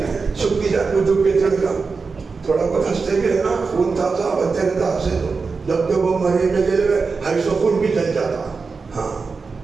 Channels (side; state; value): left; quieter; 4.6 dB